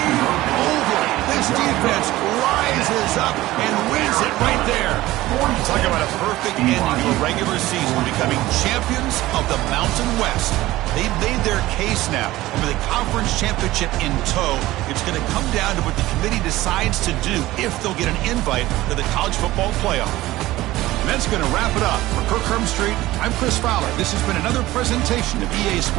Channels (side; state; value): left; quieter; 17.1 dB